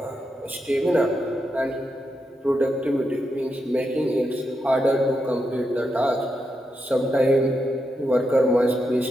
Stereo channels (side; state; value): both; normal; correlation 0.85